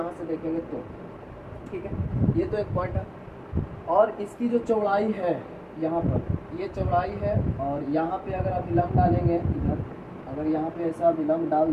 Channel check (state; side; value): identical; both; correlation 1.00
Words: से देखेंगे तो, ठीक है। ये तो एक पॉइंट है। और इसकी जो चौड़ाई है, यहाँ पर ये चौड़ाई है, और यहाँ पे अगर आप विलंब डालेंगे इधर, अगर यहाँ पे ऐसा विलंब डाल